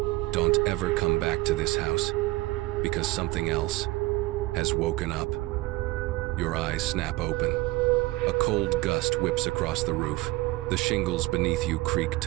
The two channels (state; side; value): quieter; left; 20.8 dB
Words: Don't ever come back to this house, because something else has woken up. Your eyes snap open. A cold gust whips across the roof. The shingles beneath you creak